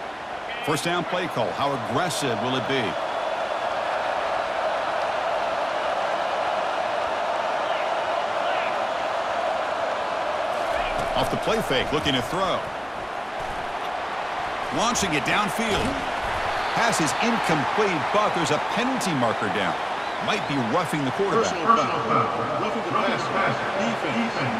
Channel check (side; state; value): both; identical; correlation 1.00